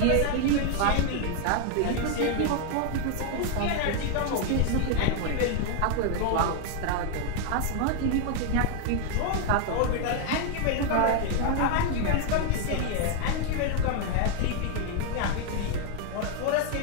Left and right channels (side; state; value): both; different; correlation 0.00